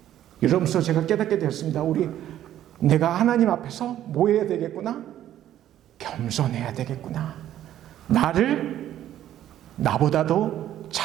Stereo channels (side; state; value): left; quieter; 11.9 dB